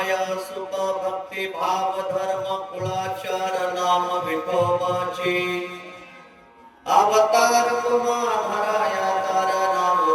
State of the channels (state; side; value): identical; both; correlation 1.00